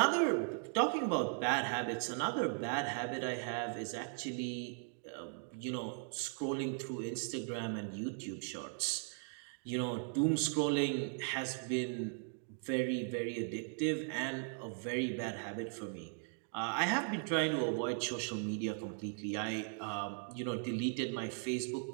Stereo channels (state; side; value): silent; left; 52 dB below the other